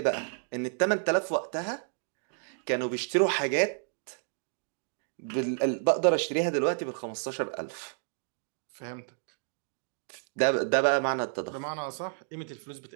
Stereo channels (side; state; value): left; silent; digital silence